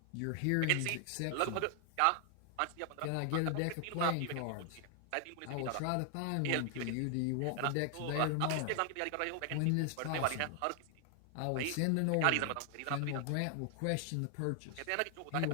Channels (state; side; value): different; both; correlation 0.00